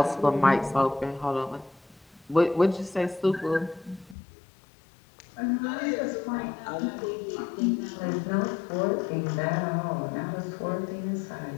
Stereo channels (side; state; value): right; drops out; at 4.2 s